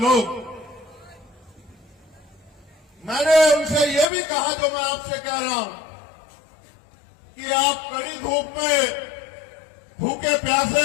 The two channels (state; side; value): drops out; right; at 4.1 s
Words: मैंने उनसे यह भी कहा, जो मैं आपसे कह रहा हूं, कि आप कड़ी धूप में भूखे